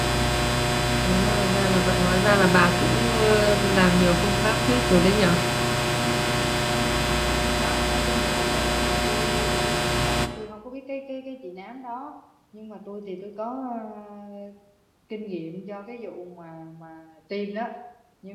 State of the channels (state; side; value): identical; both; correlation 1.00